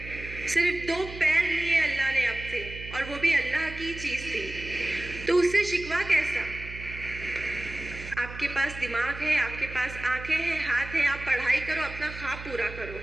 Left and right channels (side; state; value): right; noise; hum, 12 dB below the sound